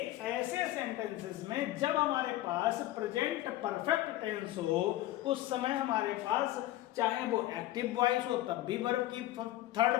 ऐसे सेंटेंसेस में जब हमारे पास प्रेजेंट परफेक्ट टेंस हो, उस समय हमारे पास चाहे वो एक्टिव वॉइस हो तब भी वर्ब की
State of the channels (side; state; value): right; quieter; 15.5 dB